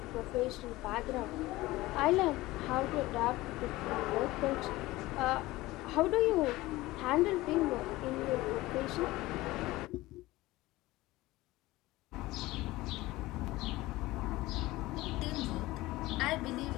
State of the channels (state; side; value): quieter; right; 18.8 dB